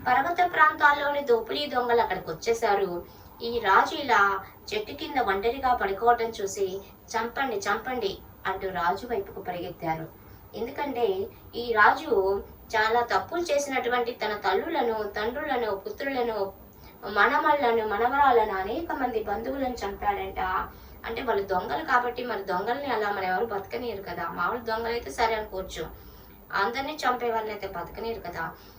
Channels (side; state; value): both; identical; correlation 1.00